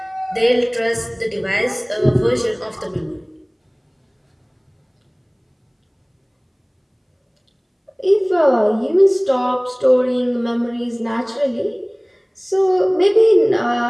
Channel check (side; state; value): both; identical; correlation 1.00